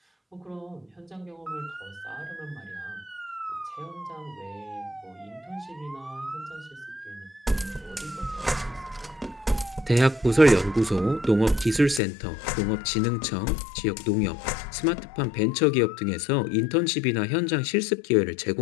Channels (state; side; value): drops out; right; at 12.0 s